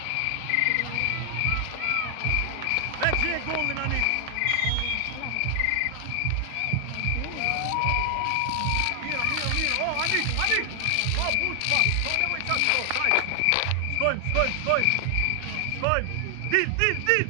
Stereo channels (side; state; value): both; different; correlation 0.00